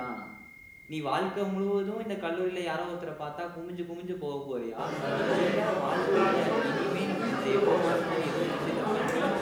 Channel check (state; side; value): identical; both; correlation 1.00